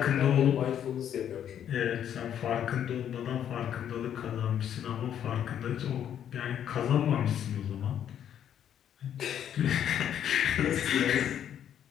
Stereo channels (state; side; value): quieter; right; 9.7 dB